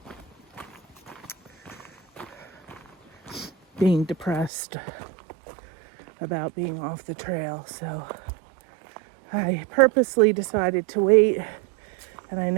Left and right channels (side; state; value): left; drops out; at 4.5 s